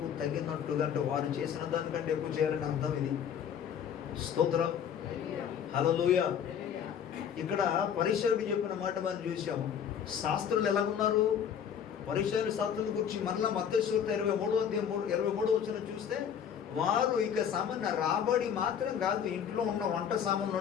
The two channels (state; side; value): quieter; right; 8.3 dB